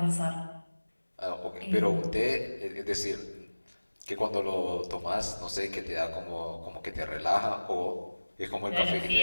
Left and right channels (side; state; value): both; inverted; correlation -1.00